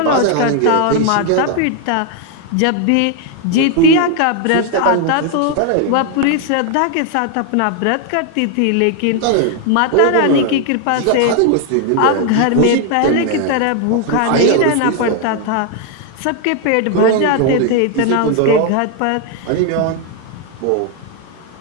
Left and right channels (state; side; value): different; both; correlation 0.01